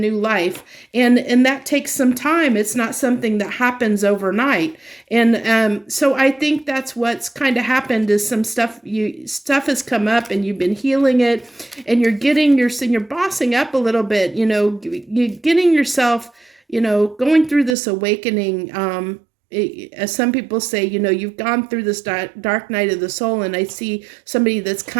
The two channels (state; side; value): drops out; left; at 17.8 s